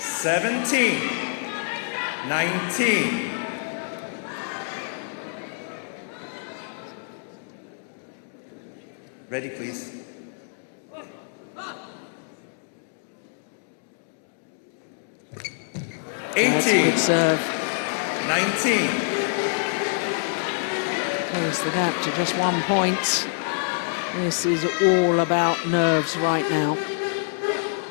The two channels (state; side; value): silent; right; digital silence